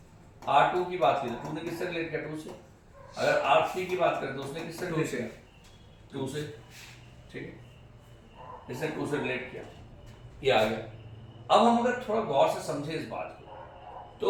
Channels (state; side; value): identical; both; correlation 1.00